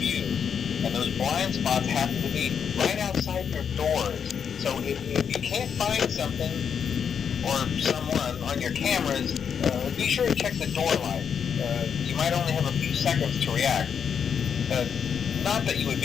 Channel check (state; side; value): quieter; right; 7.3 dB